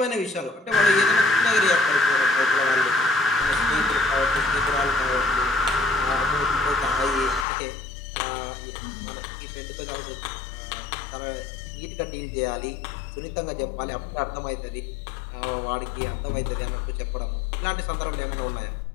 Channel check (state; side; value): drops out; right; at 7.5 s